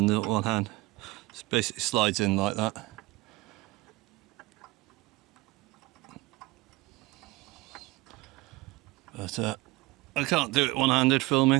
the one hand. It basically slides in like that. But I can't do it one-handed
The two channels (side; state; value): left; quieter; 20.7 dB